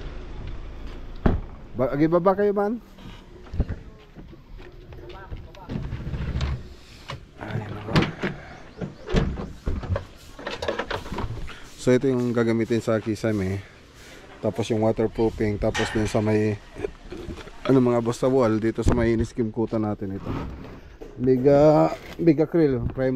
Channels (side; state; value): both; identical; correlation 1.00